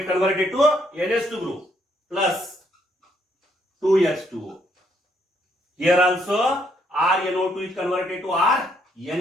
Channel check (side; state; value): both; normal; correlation 0.71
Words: converted to NH2 group plus 2H2O. Here also RNO2 is converted to